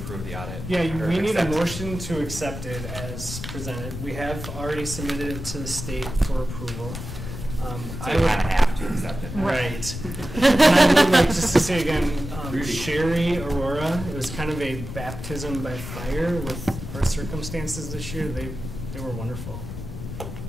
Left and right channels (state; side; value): noise; left; rumble, 8 dB below the sound